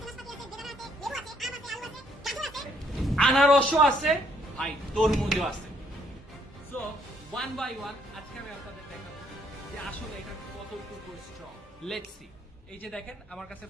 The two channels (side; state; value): both; normal; correlation 0.68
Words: আনারসও আছে ভাই, তরমুজও আছে। সো ওয়ান বাই ওয়ান আজকে আমি আপনাদের দেখাবো যে আসলে এটা কতটুকু স্ট্রং। Let's see. এই যে দেখেন আমার কাছে